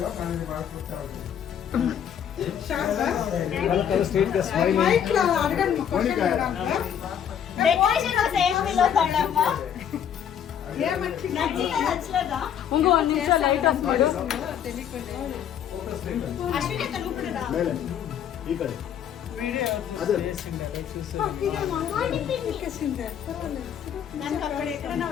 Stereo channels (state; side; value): quieter; right; 9.0 dB